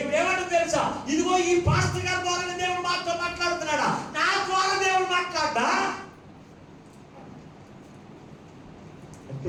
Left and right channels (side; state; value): both; identical; correlation 1.00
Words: తెలుసా, ఇదిగో ఈ పాస్టర్ గారి ద్వారా దేవుడు మాతో మాట్లాడుతున్నాడా, నా ద్వారా దేవుడు మాట్లాడా